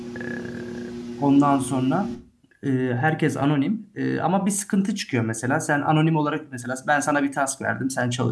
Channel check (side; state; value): both; identical; correlation 1.00